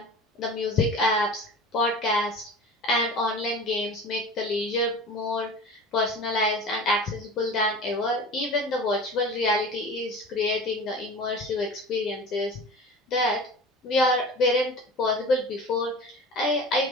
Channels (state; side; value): normal; both; correlation 0.36